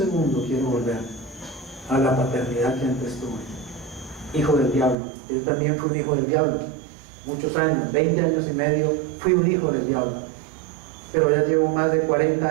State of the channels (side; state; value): left; drops out; at 5.0 s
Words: quiero volver a la paternidad que antes tuve. Hijo del diablo. Yo también fui un hijo del diablo. Muchos años, 20 años y medio, fui un hijo del diablo. Pero ya llevo más de